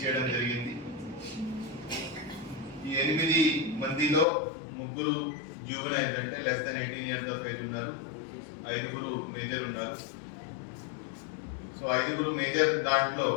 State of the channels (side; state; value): right; drops out; at 4.2 s